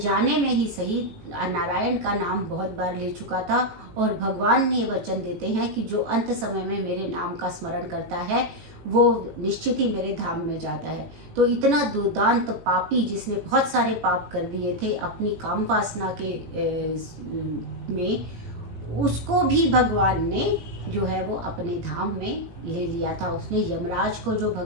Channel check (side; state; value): left; late; 18 ms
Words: में ही सही नारायण का नाम बहुत बार ले चुका था। और भगवान ने वचन देते हैं कि जो अंत समय में मेरे नाम का स्मरण करता है वो निश्चित ही मेरे धाम में जाता है। तो इतना दुर्दांत पापी जिसने बहुत सारे पाप कर दिए थे अपनी काम वासना के में, उसको भी भगवान ने जो है वो अपने धाम में ले लिया था। उसने यमराज को, जो